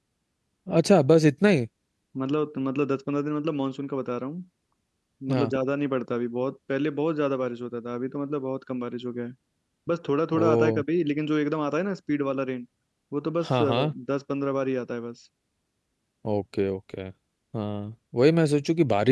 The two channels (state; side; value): identical; both; correlation 1.00